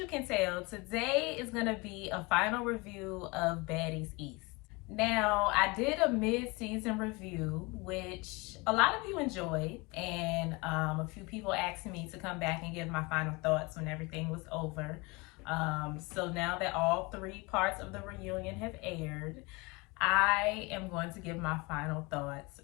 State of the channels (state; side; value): quieter; right; 26.2 dB